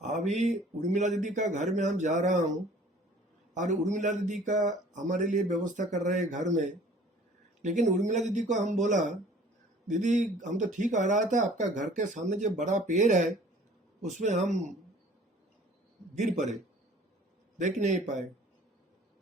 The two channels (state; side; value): normal; both; correlation 0.51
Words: उर्मिला दीदी का घर में हम जा रहा हूं और उर्मिला दीदी का हमारे लिए व्यवस्था कर रहे हैं घर में। लेकिन उर्मिला दीदी को हम बोला, दीदी हम तो ठीक आ रहा था, आपका घर के सामने जो बड़ा पेड़ है उसमें हम गिर पड़े, देख नहीं पाए।